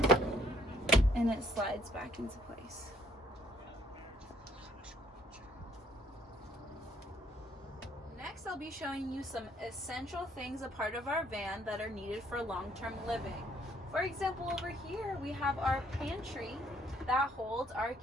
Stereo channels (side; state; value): both; normal; correlation 0.64